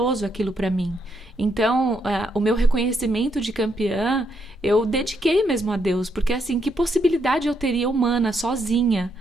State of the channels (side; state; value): both; normal; correlation 0.77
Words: aquilo para mim. Então, o meu reconhecimento de campeã, eu dediquei mesmo a Deus, porque assim, que possibilidade eu teria humana, sozinha,